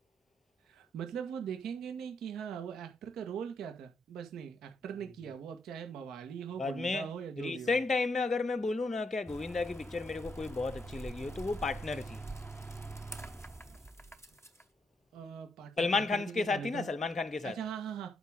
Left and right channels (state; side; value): normal; both; correlation 0.77